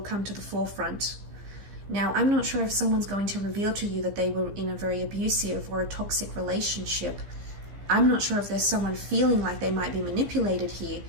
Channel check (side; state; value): left; late; 15 ms